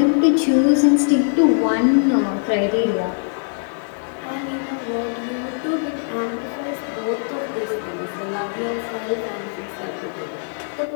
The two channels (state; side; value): silent; right; digital silence